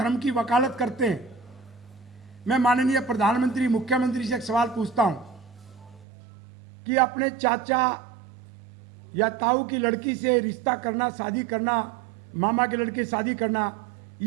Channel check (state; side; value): drops out; left; at 6.1 s